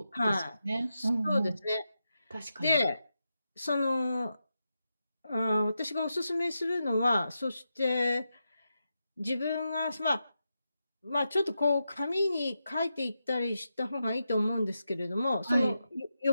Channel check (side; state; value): both; inverted; correlation -0.88